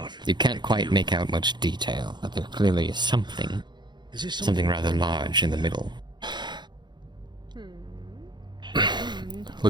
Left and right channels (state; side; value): late; left; 0.21 ms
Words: you can't quite make out much detail, but there clearly is something rather large in the middle.